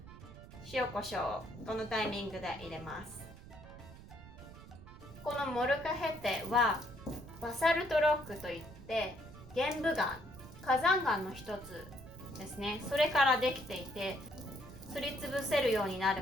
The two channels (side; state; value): right; noise; rumble, 16 dB below the sound